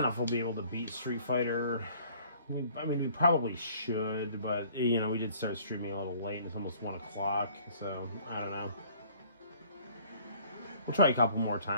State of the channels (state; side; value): inverted; both; correlation -0.56